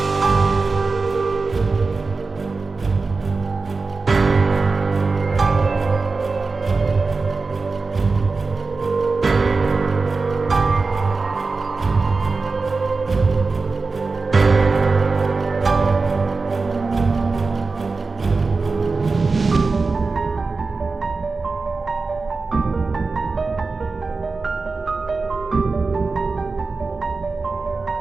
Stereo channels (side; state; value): left; quieter; 4.0 dB